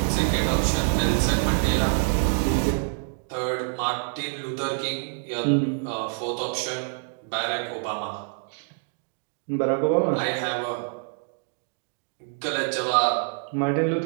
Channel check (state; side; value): quieter; left; 38.5 dB